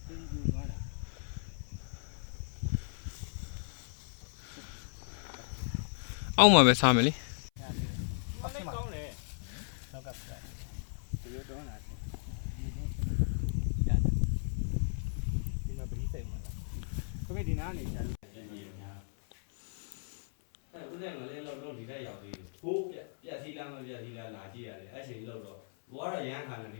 ဒီကူသွားတာအောက်မှာပဲစားမယ်လေ ဟုတ်တယ်ကောင်းတယ်နောက်ကပြဒီလိုတော့လာတယ်ဒီမှာပရိစိတ်မှာလားခမေဒီနာနေချာလို့ဦးတဲ့ငလေးလောက်ဒီထက်ရောက်သေးတယ်ဟိုးပြက်စီးလားမပြက်စီးလားလာကြည့်ရတယ်အဲ့ချိန်လောက်တော့ဘောကတော့ရမ်းခါနေဒ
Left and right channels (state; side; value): silent; right; 54 dB below the other